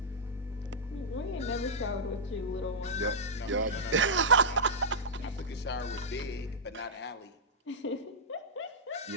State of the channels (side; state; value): both; normal; correlation -0.10